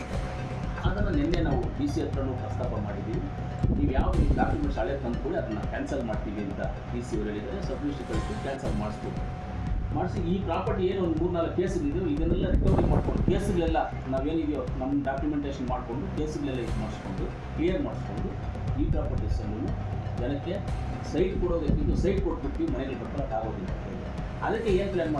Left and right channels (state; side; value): identical; both; correlation 1.00